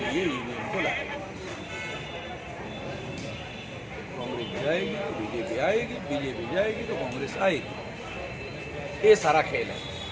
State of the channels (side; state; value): both; identical; correlation 1.00